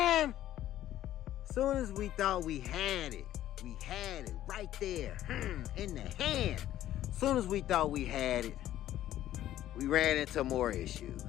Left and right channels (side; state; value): right; quieter; 12.9 dB